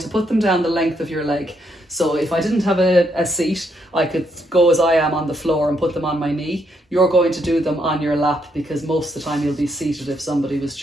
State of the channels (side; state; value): both; normal; correlation 0.75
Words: put them down the length of your leg. So if I didn't have a seat, I could go as I am on the floor and put them on my knee. You're going to do them on your lap, because most of the time you'll be seated if somebody was